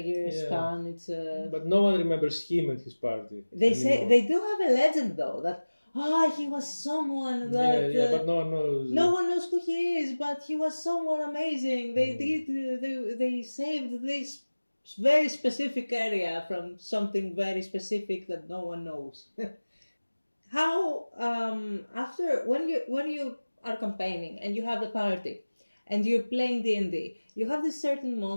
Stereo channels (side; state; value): both; inverted; correlation -1.00